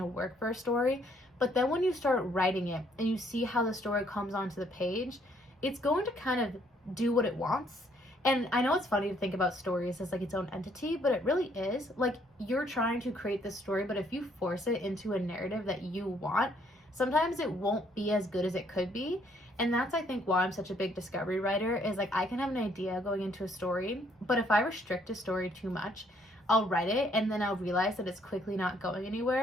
work for a story, but then when you start writing it and you see how the story comes onto the page, it's going to kind of do what it wants. And I know it's funny to think about stories as like its own entity, but it really is. Like, you're trying to create this story, but if you force it into a narrative that you want, sometimes it won't be as good as it could be. And that's, I think, why I'm such a big discovery writer, is like I can have an idea going into a story, but if I restrict a story too much, I'll write it and then I'll realize that it's quickly not going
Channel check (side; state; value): both; normal; correlation 0.67